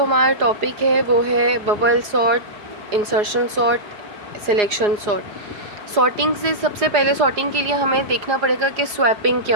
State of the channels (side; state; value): left; late; 4.9 ms